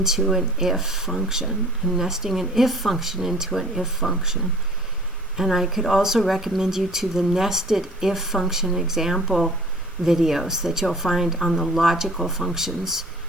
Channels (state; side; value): normal; both; correlation 0.49